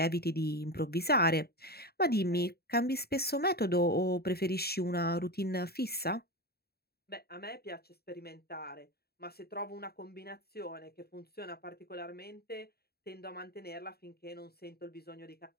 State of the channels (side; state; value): right; late; 0.46 ms